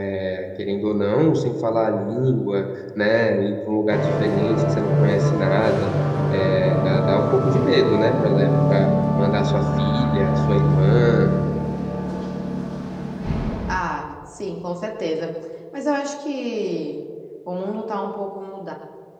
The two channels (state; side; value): identical; both; correlation 1.00